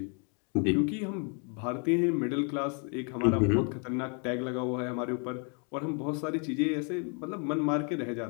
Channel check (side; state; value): right; quieter; 38.6 dB